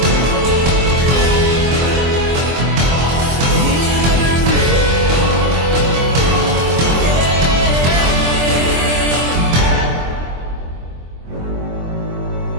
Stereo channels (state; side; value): late; left; 24 ms